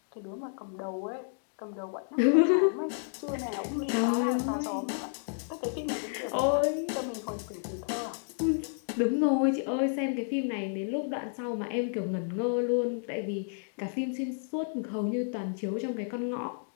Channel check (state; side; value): silent; right; digital silence